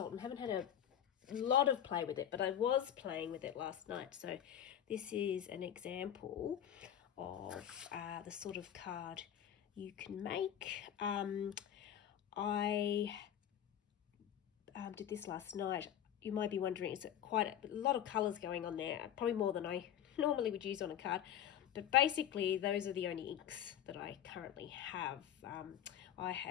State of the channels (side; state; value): right; quieter; 10.3 dB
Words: haven't had a lot of play with it, but I was playing with it last night. So this is an example of the sort of card you can make. I did this last night. You might be wondering, is it quite a lot of colours going on there? Probably more than I normally would use on a card. But basically, those are the only inks that I currently have. I